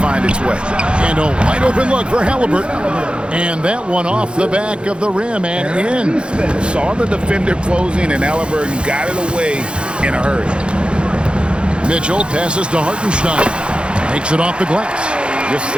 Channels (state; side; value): late; left; 0.056 ms